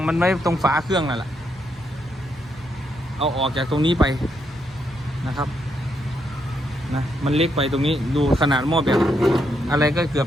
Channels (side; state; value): both; normal; correlation 0.78